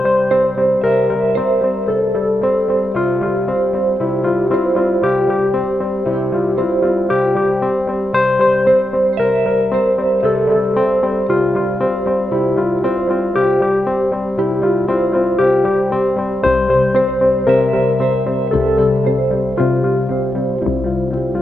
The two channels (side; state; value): left; noise; rumble, 26 dB below the sound